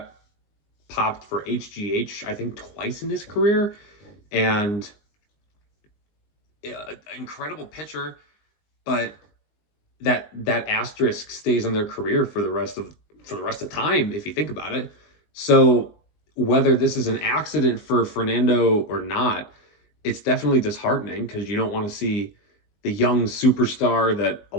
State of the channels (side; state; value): right; late; 19 ms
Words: popped for HGH, I think, twice in his career, and incredible pitcher, but that asterisk stays on their career for the rest of time, if you think about it. So whether this is an accident for Fernando or not, it's definitely disheartening, because you don't want to see the young superstar that a